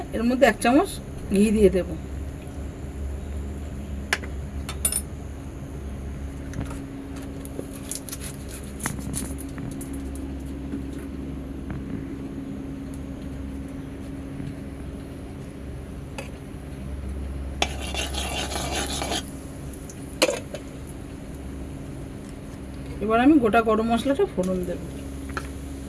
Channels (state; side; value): identical; both; correlation 1.00